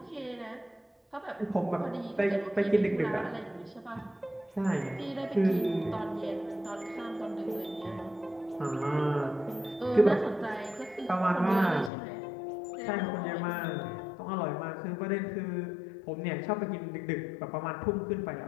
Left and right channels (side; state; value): right; drops out; at 11.9 s